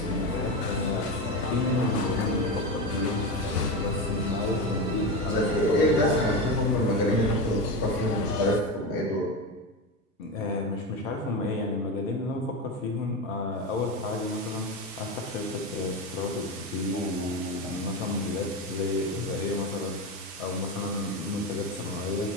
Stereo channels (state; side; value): normal; both; correlation 0.18